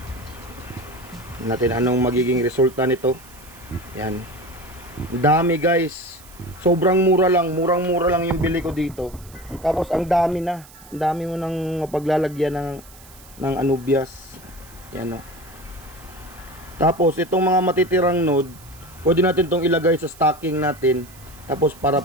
Natin anong magiging resulta nito. Yan. Dami guys. Sobrang mura lang. Murang-mura lang yung bili ko dito. Tapos ang dami na. Ang dami mo nang paglalagyan ng Anubias. Yan, o. Tapos itong mga matitirang node, pwede natin itong ilagay sa stocking natin. Tapos para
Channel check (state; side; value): noise; right; hiss, 22 dB below the sound